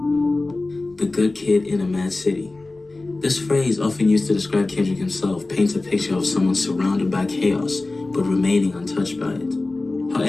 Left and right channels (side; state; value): right; quieter; 3.2 dB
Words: The good kid in a mad city. This phrase, often used to describe Kendrick himself, paints a picture of someone surrounded by chaos, but remaining untouched by it.